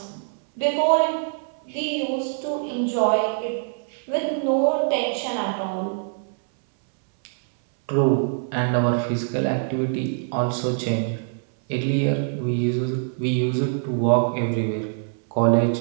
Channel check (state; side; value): silent; left; 63 dB below the other